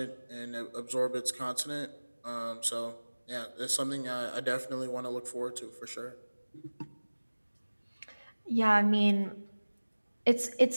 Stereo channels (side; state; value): both; inverted; correlation -1.00